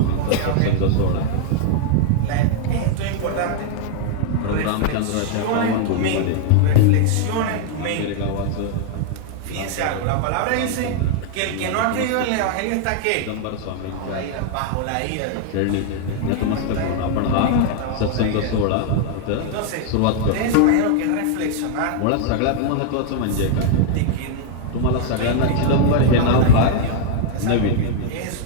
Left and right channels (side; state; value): both; different; correlation 0.00